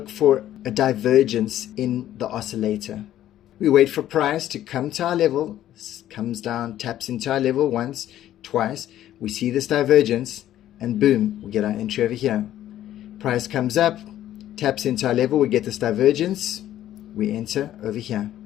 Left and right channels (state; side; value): quieter; right; 12.5 dB